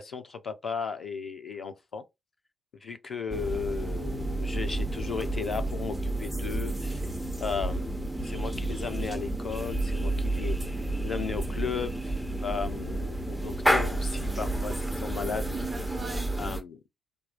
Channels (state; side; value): normal; both; correlation 0.83